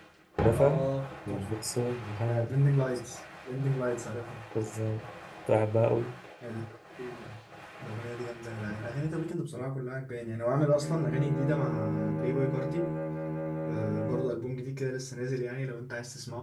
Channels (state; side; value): identical; both; correlation 1.00